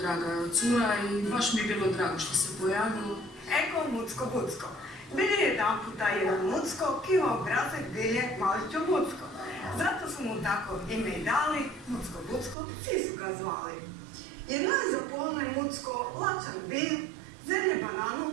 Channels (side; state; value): left; drops out; at 12.6 s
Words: cura i baš mi je bilo drago što se pojavilo. Eko Mucko-Bucko. Bili je jedan puta jedan Mucko, ki ima obrazek bilje maličo Bucko. Zato su mu tako ime i dali, Mucko-Bucko, svi su ga zvali. Jedno je zapolno Mucko lačan bil, zemlje bananu